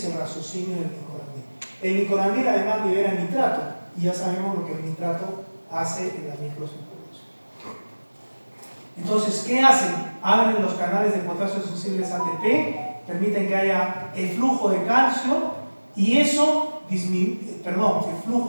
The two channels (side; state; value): both; inverted; correlation -1.00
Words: el raciocinio del nicorandil. El nicorandil además libera nitrato, y ya sabemos lo que el nitrato hace en la microcirculación. Entonces, ¿qué hacen? Abren los canales de potasio sensibles ATP, permiten que haya el flujo de calcio, y eso el